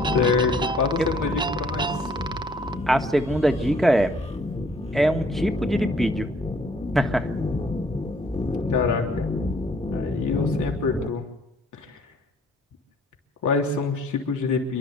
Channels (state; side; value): normal; both; correlation 0.60